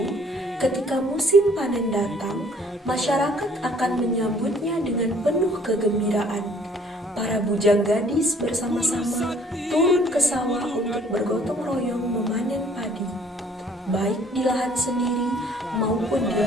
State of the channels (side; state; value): both; normal; correlation 0.58